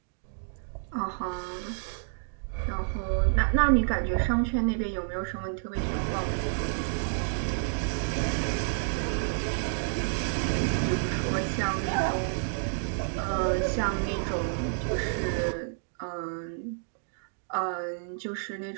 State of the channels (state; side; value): silent; left; digital silence